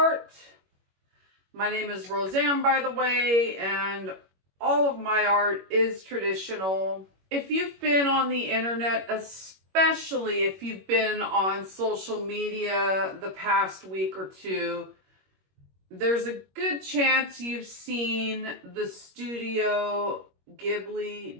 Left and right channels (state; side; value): late; left; 21 ms